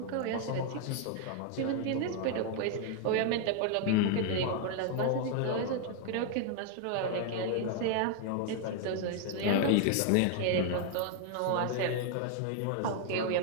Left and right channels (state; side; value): different; both; correlation 0.00